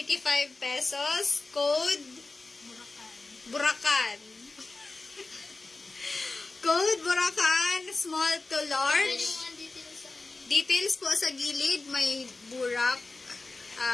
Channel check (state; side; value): quieter; right; 3.5 dB